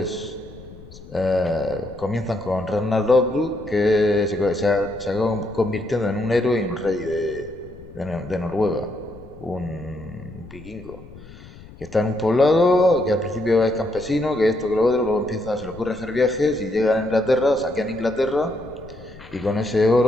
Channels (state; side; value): noise; left; rumble, 18 dB below the sound